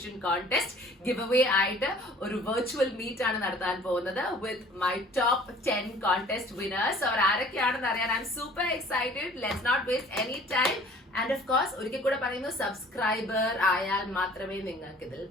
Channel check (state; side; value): normal; both; correlation 0.51